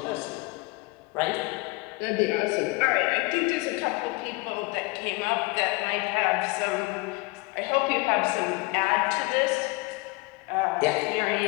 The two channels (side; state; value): right; quieter; 25.0 dB